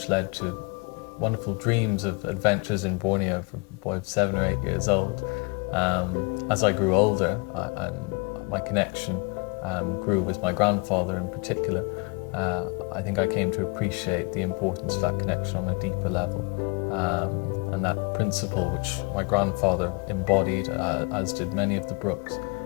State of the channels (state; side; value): quieter; right; 30.1 dB